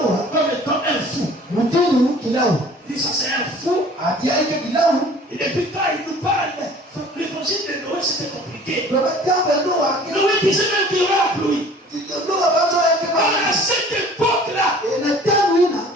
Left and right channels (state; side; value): normal; both; correlation 0.49